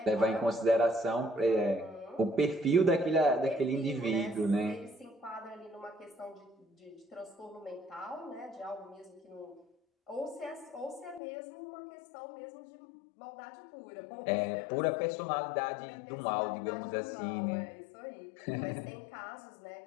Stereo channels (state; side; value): drops out; right; at 11.2 s